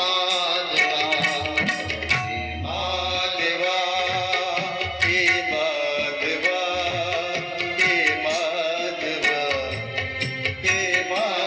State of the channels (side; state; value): both; identical; correlation 1.00